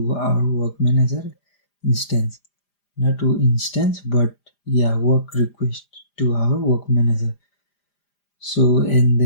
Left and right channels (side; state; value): right; late; 5.0 ms